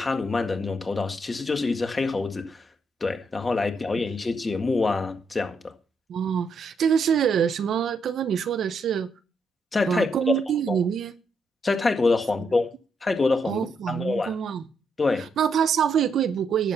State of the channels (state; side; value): normal; both; correlation 0.77